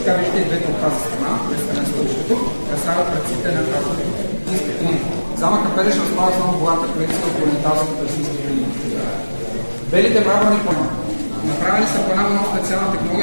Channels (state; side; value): inverted; both; correlation -1.00